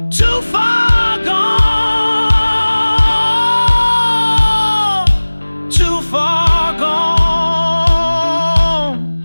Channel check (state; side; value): inverted; both; correlation -1.00